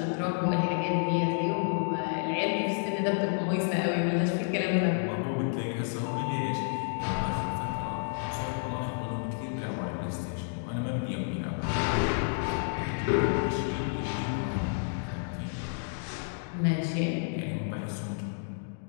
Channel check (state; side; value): silent; right; digital silence